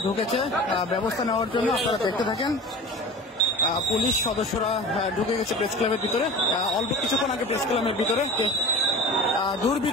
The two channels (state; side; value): normal; both; correlation 0.36